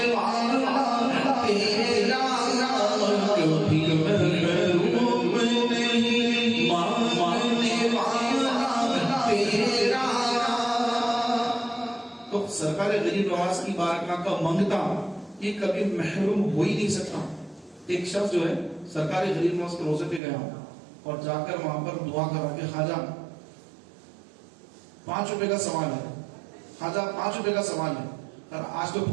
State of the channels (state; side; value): drops out; left; at 20.2 s